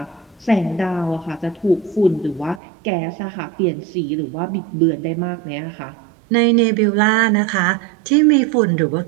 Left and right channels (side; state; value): left; drops out; at 2.6 s